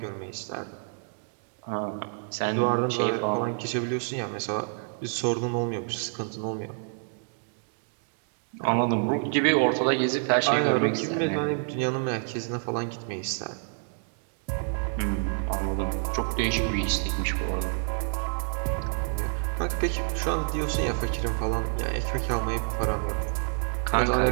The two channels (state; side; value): silent; left; 59 dB below the other